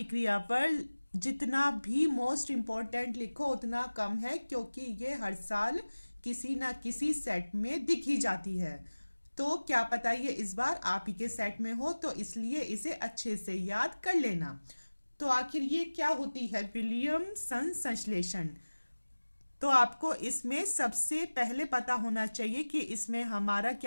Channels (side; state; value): both; inverted; correlation -1.00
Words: पर जितना भी मोस्ट इम्पोर्टेंट लिखो उतना कम है, क्योंकि ये हर साल किसी ना किसी सेट में दिखी जाती है। तो क्या पता ये इस बार आप ही के सेट में हो, तो इसलिए इसे अच्छे से याद कर लेना। तो आखिर ये क्या होती है विलियमसन संश्लेषण? तो आपको इसमें सबसे पहले पता होना चाहिए कि इसमें हमारा